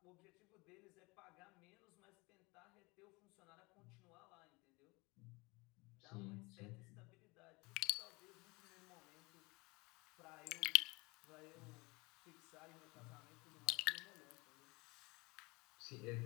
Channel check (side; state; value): right; quieter; 25.1 dB